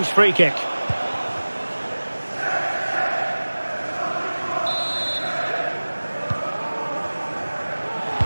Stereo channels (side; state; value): both; inverted; correlation -1.00